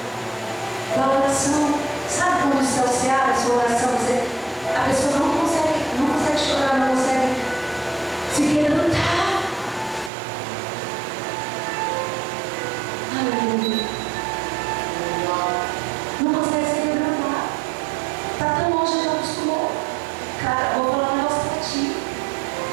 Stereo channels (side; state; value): left; drops out; at 10.1 s